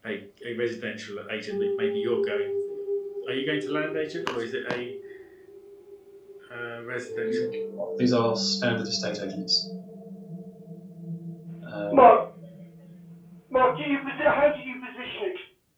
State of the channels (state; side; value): identical; both; correlation 1.00